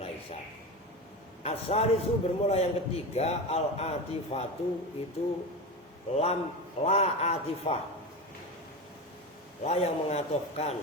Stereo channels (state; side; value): normal; both; correlation 0.23